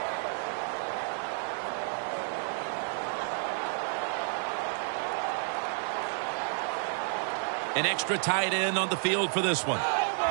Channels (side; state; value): left; silent; 57 dB below the other